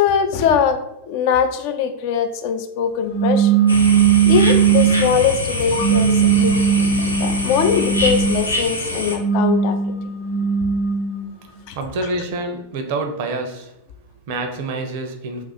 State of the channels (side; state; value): both; normal; correlation -0.03